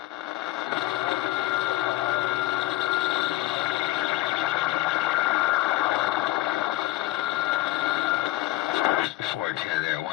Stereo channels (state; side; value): quieter; right; 16.7 dB